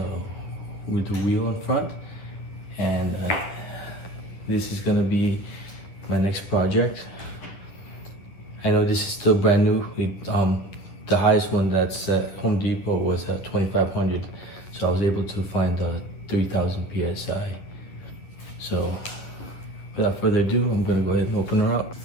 with the wheel in front. And this is gonna be my next project. I know this is still brand new. The highest one that's at Home Depot was at 2500, so I was able to find the 3000 PSI. So without further ado, I'm gonna go ahead and open her up.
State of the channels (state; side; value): late; right; 10 ms